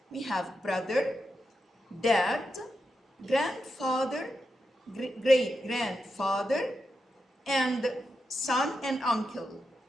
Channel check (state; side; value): normal; both; correlation 0.87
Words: we have brother, dad, grandfather, great-grandfather, and son and uncle.